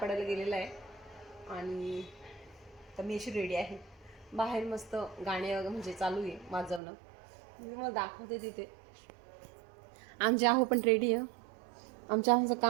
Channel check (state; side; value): drops out; left; at 6.8 s